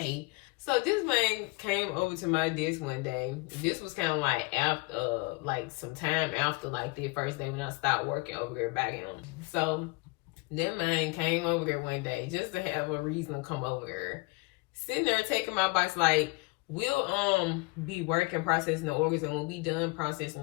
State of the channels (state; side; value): quieter; right; 26.0 dB